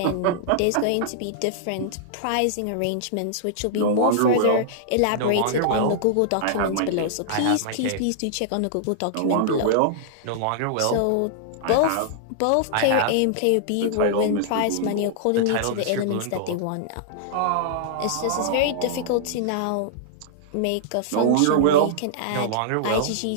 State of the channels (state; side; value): different; both; correlation -0.01